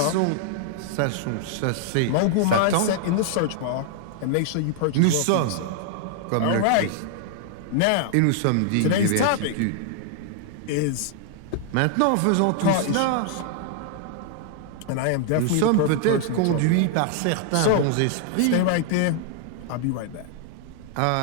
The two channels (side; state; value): both; different; correlation -0.01